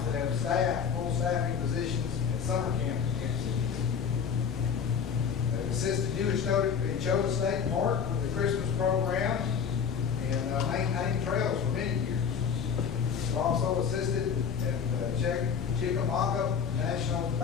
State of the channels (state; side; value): quieter; right; 6.9 dB